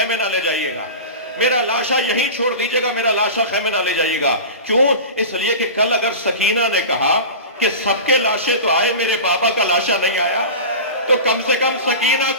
نہ لے جائیے گا, میرا لاشا یہیں چھوڑ دیجیے گا, میرا لاشا خیمے نہ لے جائیے گا. کیوں؟ اس لیے کہ کل اگر سکینہ نے کہا کہ سب کے لاشیں تو آئے میرے بابا کا لاشا نہیں آیا, تو کم سے کم سکینہ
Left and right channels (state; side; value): inverted; both; correlation -0.30